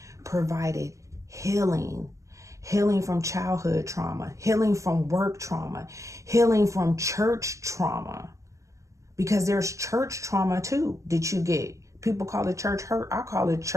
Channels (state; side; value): late; left; 0.15 ms